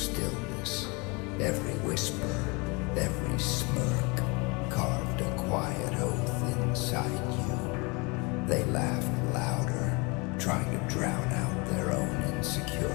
Every whisper, every smirk carved a quiet oath inside you. They laughed louder, trying to drown out their own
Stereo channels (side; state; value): right; quieter; 28.5 dB